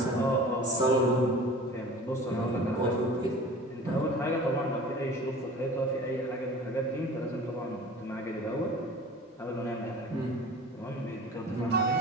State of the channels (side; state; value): both; normal; correlation 0.41